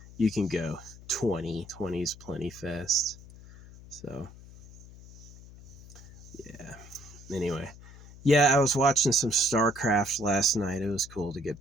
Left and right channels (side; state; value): left; noise; hum, 19 dB below the sound